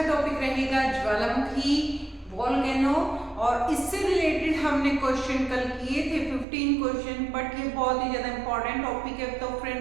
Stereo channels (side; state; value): left; drops out; at 6.5 s